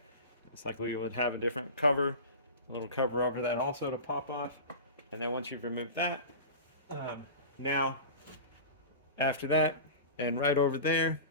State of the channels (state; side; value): inverted; both; correlation -0.32